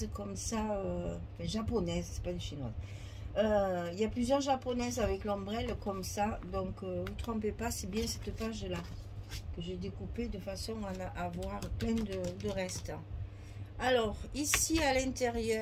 comme ça, japonaises, c'est pas des chinoises. Il y a plusieurs japonaises avec l'ombrelle comme ça, donc vous trompez pas, c'est bien cette page là que j'ai découpée de façon à avoir plein de restes. Alors ici à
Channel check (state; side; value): identical; both; correlation 1.00